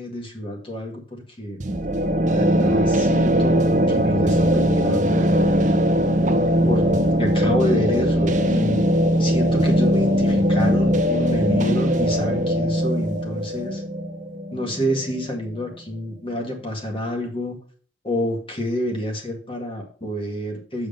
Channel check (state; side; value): normal; both; correlation 0.61